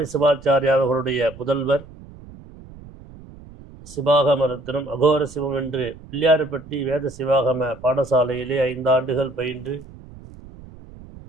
சிவாச்சாரியார் அவர்களுடைய புதல்வர் சிவாகம ரத்னம் அகோர சிவம் என்று பிள்ளையார்பட்டி வேத சிவாகம பாடசாலையிலே 5 ஆண்டுகள் பயின்று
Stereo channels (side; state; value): right; noise; rumble, 19 dB below the sound